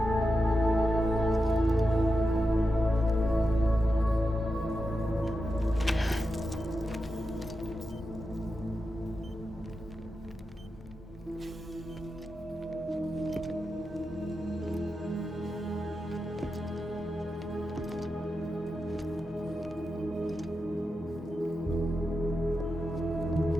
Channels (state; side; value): normal; both; correlation 0.89